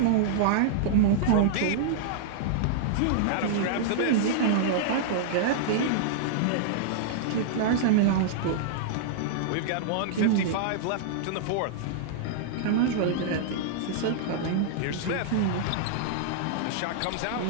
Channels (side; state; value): both; different; correlation -0.02